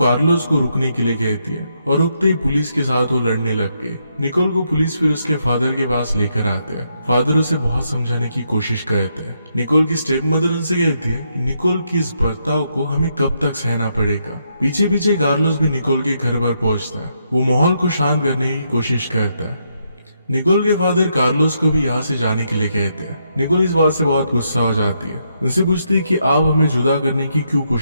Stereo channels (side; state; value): both; inverted; correlation -0.78